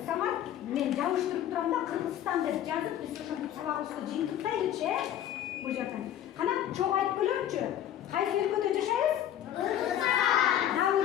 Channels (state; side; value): quieter; right; 11.1 dB